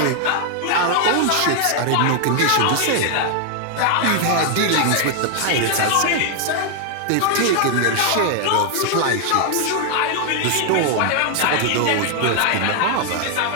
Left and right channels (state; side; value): different; both; correlation 0.00